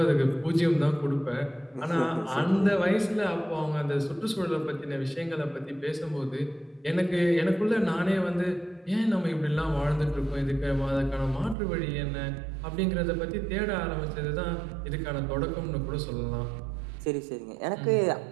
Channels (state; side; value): drops out; left; at 11.6 s